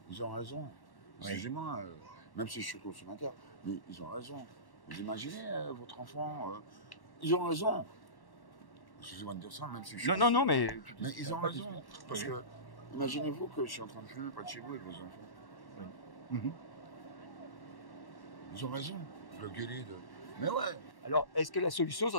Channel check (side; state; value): right; late; 1.1 ms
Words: Ils ont raison. Oui. Excusez-moi, même si je suis consommateur, mais ils ont raison. Vous imaginez votre enfant, ils ont raison. Excusez-moi de dire ça, même si je suis... Non, mais ils ont raison. Parce que, imaginez-vous que je suis en train de fumer près de chez vous avec vos enfants. Oui. Ils ont raison. Le gueuler de... Mais ouais. Alors, est-ce que la solution, ça